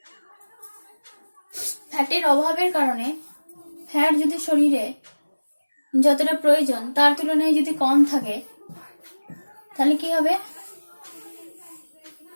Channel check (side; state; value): both; inverted; correlation -1.00